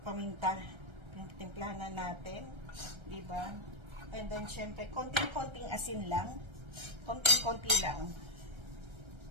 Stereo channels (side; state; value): left; late; 1.3 ms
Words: paminta. Timplahan na natin, diba? And then, syempre, konting-konting asin lang. Konting-konti lang.